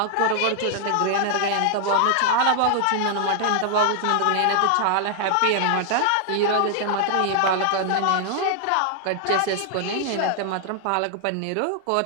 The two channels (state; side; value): different; both; correlation 0.00